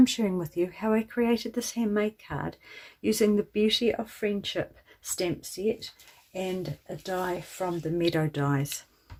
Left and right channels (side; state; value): both; identical; correlation 1.00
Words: sharing with you how I created this handmade card using the Beauty of Friendship stamp set and a die from the Meadow dies.